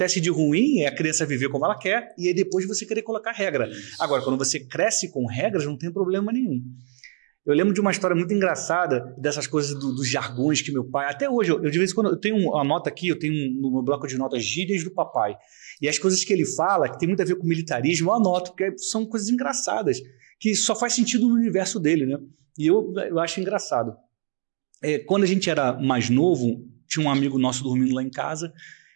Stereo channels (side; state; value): left; silent; 56 dB below the other